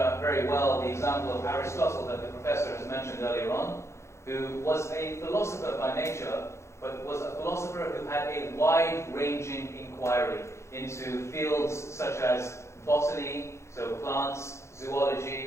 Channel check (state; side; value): late; right; 0.13 ms